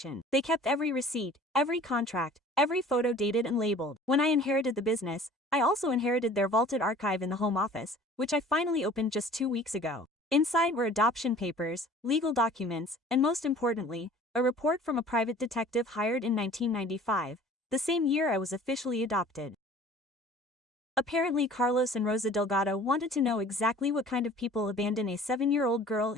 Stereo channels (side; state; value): both; normal; correlation 0.47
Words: They kept every receipt, every contract, every photo dated and labeled. When I inherited the business, I also inherited their vaulted archive in the home office, which I finally opened just 2 weeks ago. Inside were adoption papers, legal documents, and most importantly, a report from a private detective hired in 1995, the same year I was officially adopted. Apparently Carlos and Rosa Delgado wanted to know exactly what kind of people abandon a 7-year-old girl